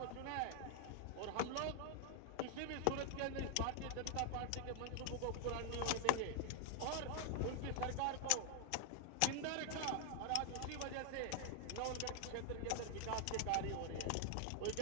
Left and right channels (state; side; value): different; both; correlation 0.00